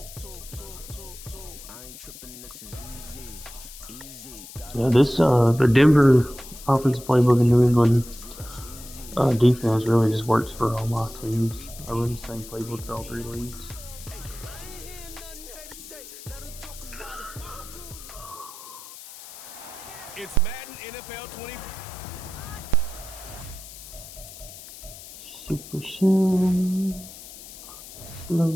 Yeah, the Denver offensive playbook in New England defense really just works for all my teams. I run the same playbooks all three leagues. It's Madden NFL 20. Super Sim.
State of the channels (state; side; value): noise; left; hiss, 15 dB below the sound